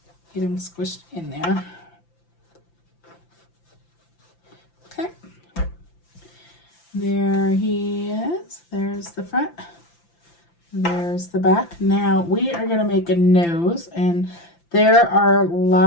get them squished in there. Okay, there he is. There's the front, there's the back. Now we are going to make a nose, and there are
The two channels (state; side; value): late; right; 5.9 ms